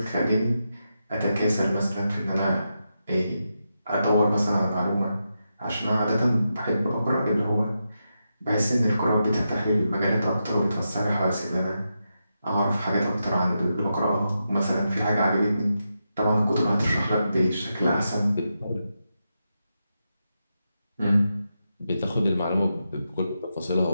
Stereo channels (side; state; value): both; inverted; correlation -0.87